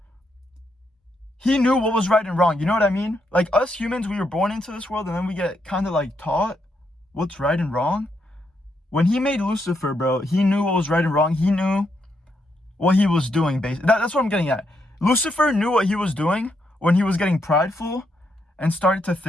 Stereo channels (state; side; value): normal; both; correlation 0.79